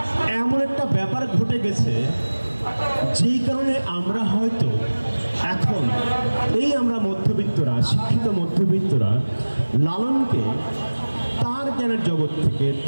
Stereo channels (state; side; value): inverted; both; correlation -1.00